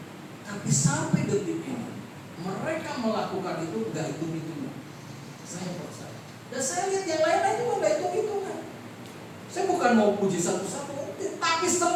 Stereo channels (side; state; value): both; identical; correlation 1.00